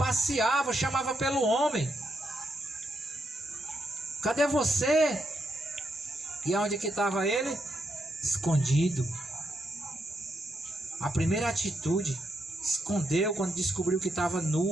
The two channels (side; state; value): both; normal; correlation 0.81